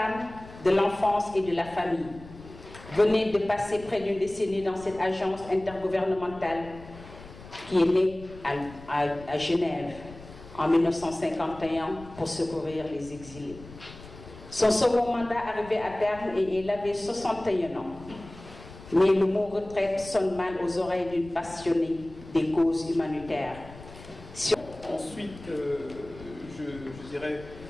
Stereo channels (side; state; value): left; noise; rumble, 18 dB below the sound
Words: de l'Enfance et de la Famille. Venait de passer près d'une décennie dans cette agence intergouvernementale qui est née à Genève en 1951 pour secourir les exilés. Son second mandat arrivait à terme et elle avait 61 ans. Mais le mot retraite sonne mal aux oreilles d'une passionnée des causes humanitaires. Ensuite, je dirais,